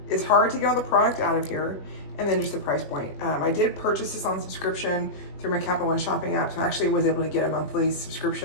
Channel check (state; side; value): late; right; 21 ms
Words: it's hard to get all the product out of here, and then just the price point. I did purchase this on subscription through my Capital One shopping app, so I actually was able to get a monthly